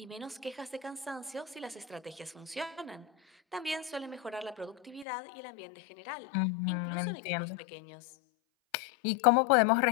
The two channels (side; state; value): right; drops out; at 5.1 s